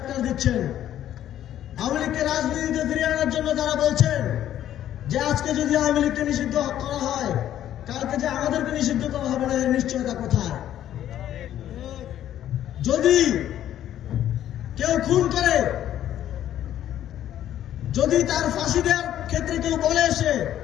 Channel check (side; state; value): right; quieter; 11.6 dB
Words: দিচ্ছেন। আওয়ামী লীগকে রাজনীতিতে ফিরিয়ে আনার জন্য তারা বলছেন যে আজকে যদি আওয়ামী লীগকে নিষিদ্ধ করা হয়, কালকে যে আমাদেরকে নিষিদ্ধ করা হবে না, এর নিশ্চয়তা কোথায়? যদি কেউ খুন করে, যদি তার ফাঁসি দেওয়ার ক্ষেত্রে কেউ বলে এসে